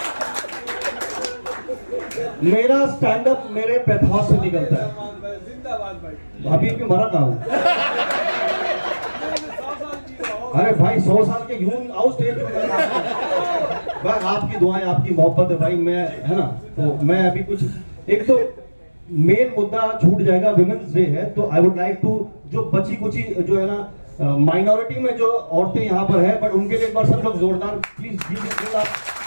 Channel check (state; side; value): inverted; both; correlation -1.00